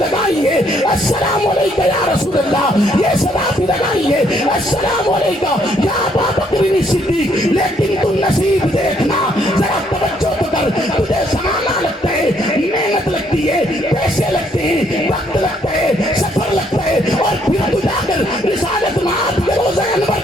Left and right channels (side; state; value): both; normal; correlation 0.69